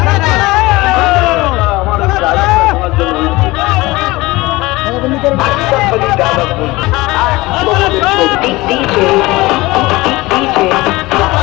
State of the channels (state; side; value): quieter; right; 20.7 dB